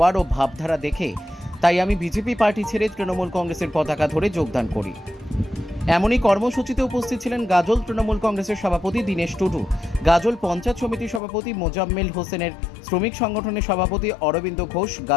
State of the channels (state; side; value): drops out; right; at 11.2 s